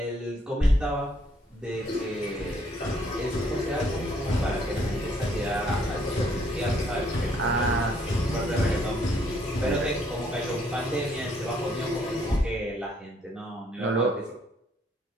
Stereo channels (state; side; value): normal; both; correlation 0.68